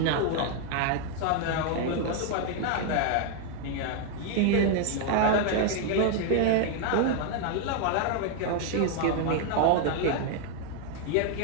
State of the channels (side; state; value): both; different; correlation 0.00